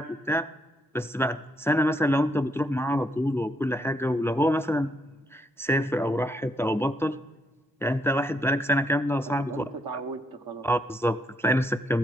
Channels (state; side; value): normal; both; correlation 0.76